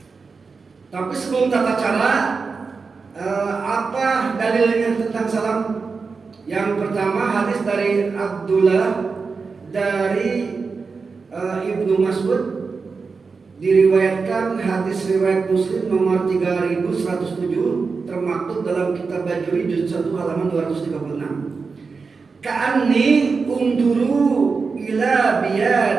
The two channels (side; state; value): left; quieter; 4.7 dB